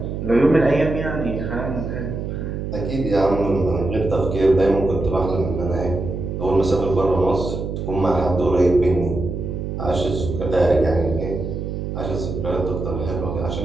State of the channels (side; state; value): right; noise; hum, 5 dB below the sound